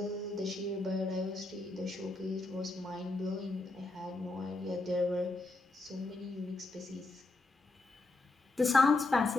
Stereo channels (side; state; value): right; quieter; 3.2 dB